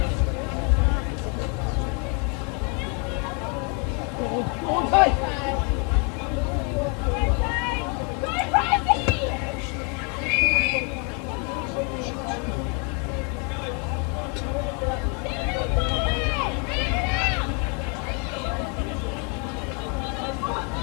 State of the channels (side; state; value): right; quieter; 33.5 dB